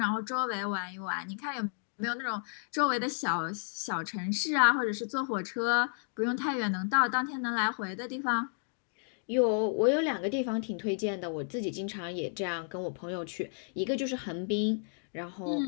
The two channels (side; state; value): right; silent; digital silence